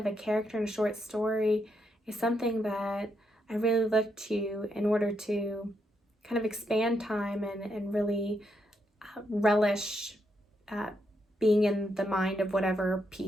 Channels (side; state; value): both; normal; correlation 0.79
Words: a character in a short story is something that I really look to in order to kind of expand time and really relish being in the mind of whatever